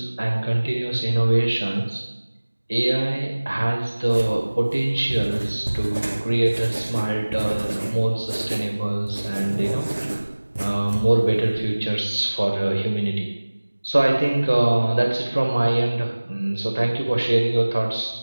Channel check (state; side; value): inverted; both; correlation -1.00